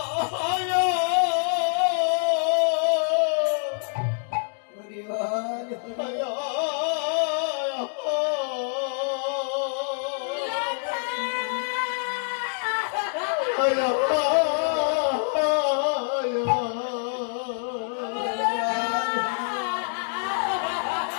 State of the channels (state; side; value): silent; right; digital silence